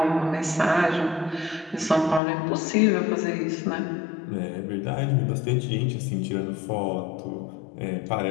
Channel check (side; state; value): right; drops out; at 2.2 s